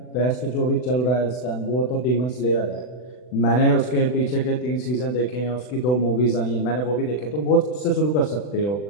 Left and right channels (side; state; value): right; late; 40 ms